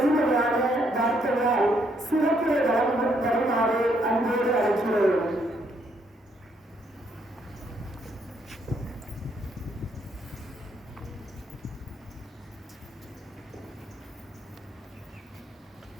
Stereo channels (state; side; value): normal; both; correlation 0.72